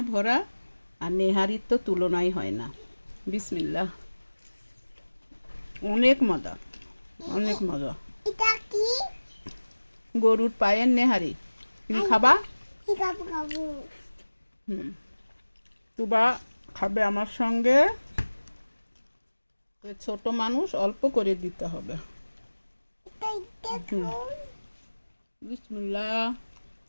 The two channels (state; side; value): inverted; both; correlation -1.00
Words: ভরা, আর নেহারির তো তুলনাই হয় না। বিসমিল্লাহ। অনেক মজা, অনেক মজা। এটা কি? গরুর পায়ের নেহারি। তুমি খাবা? খাবো। তুবা খাবে আমার সঙ্গে। ছোট মানুষ, অল্প করে দিতে হবে। বিসমিল্লাহ।